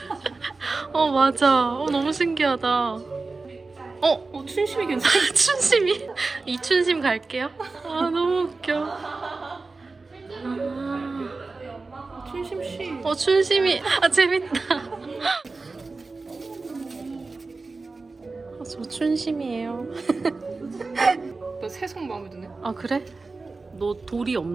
맞아. 너무 신기하다. 춘심이 괜찮아. 춘심이? 이춘심 갈게요. 너무 웃겨. 춘심 씨. 춘심이. 재밌다. 저 춘심이에요. 너 새송 마음에 드네. 아, 그래? 너 돌이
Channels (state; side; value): quieter; left; 3.8 dB